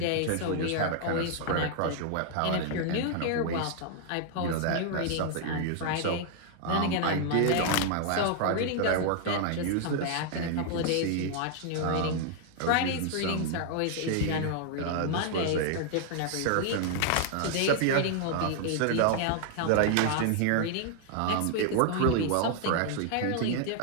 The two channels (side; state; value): both; different; correlation 0.00